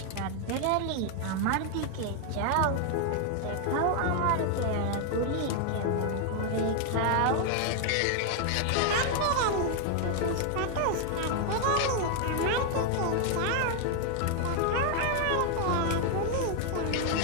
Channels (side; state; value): both; different; correlation 0.00